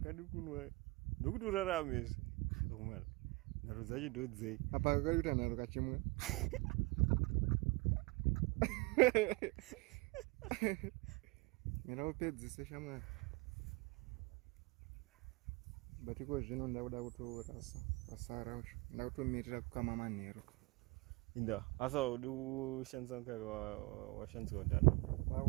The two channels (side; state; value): left; quieter; 24.1 dB